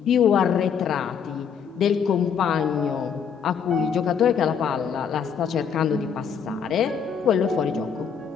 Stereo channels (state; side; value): quieter; right; 7.1 dB